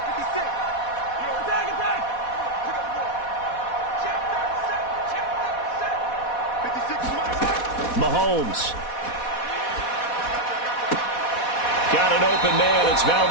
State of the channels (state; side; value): late; right; 4.1 ms